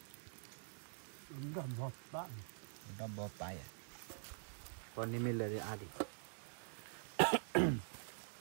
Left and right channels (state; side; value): silent; left; digital silence